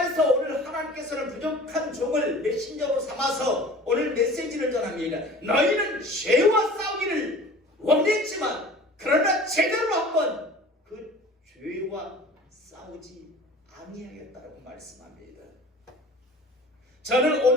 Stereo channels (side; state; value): both; normal; correlation 0.43